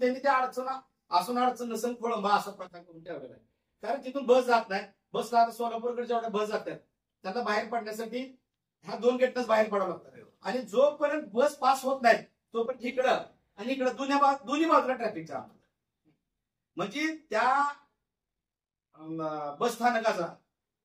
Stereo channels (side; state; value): both; identical; correlation 1.00